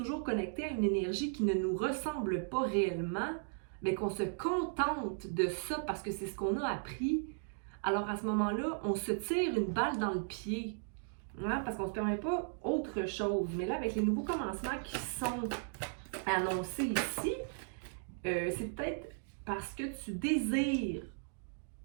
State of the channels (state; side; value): silent; left; digital silence